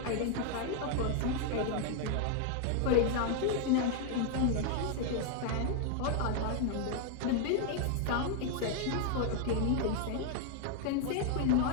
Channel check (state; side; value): different; both; correlation 0.00